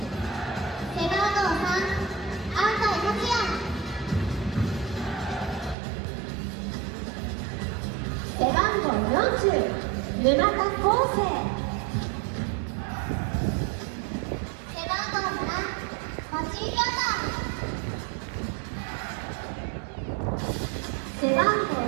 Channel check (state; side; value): drops out; left; at 5.8 s